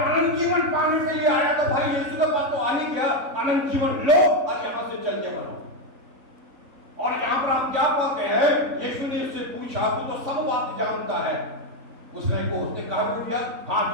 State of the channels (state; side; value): late; left; 3.8 ms